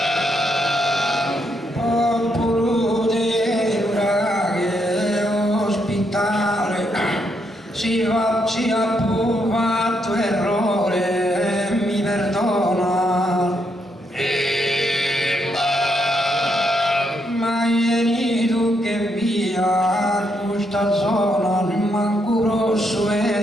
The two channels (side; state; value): both; normal; correlation 0.77